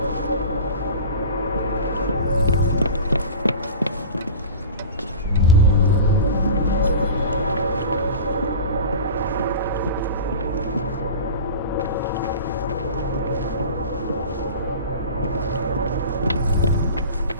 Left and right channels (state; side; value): inverted; both; correlation -0.34